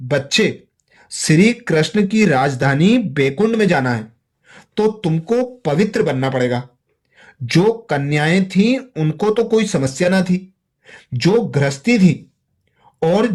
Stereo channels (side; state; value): both; identical; correlation 1.00